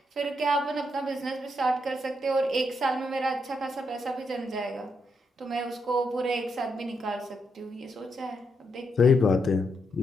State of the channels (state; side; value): normal; both; correlation 0.80